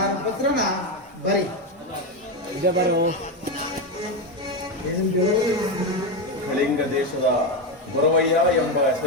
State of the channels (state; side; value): normal; both; correlation 0.11